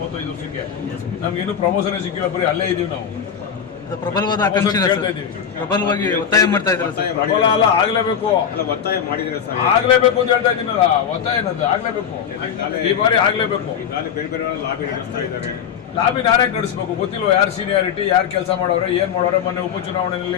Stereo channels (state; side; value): quieter; right; 8.0 dB